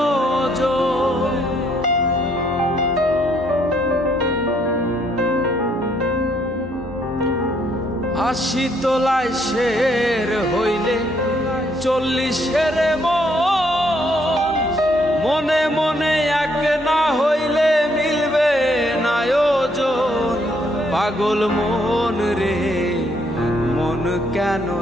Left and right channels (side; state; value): both; normal; correlation 0.70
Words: আশি তোলায় শের হইলে 40-এর মন, মনে মনে এক না হইলে মিলবে না ওজন। পাগল মন রে, মন কেন